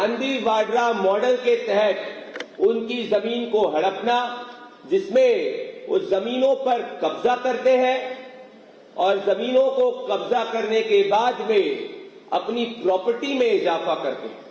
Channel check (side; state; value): both; identical; correlation 1.00